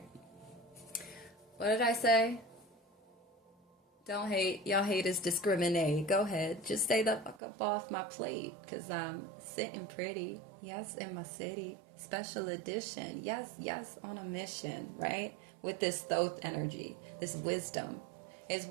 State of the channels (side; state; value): left; drops out; at 7.4 s